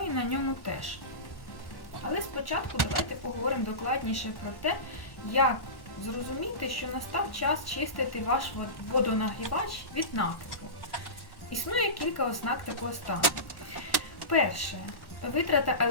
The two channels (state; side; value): late; right; 1.1 ms